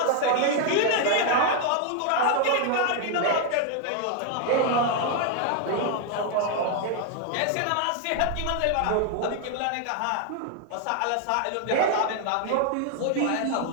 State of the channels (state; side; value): different; both; correlation 0.00